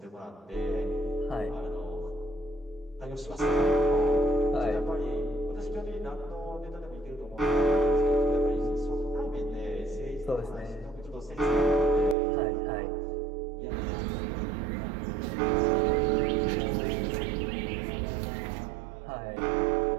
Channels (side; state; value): left; drops out; at 12.2 s